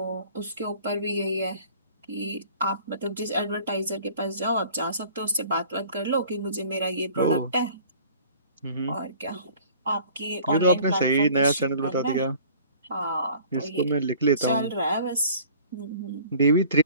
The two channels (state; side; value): inverted; both; correlation -0.50